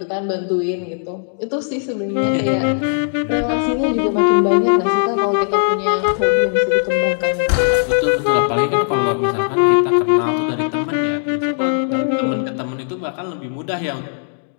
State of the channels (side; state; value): right; silent; digital silence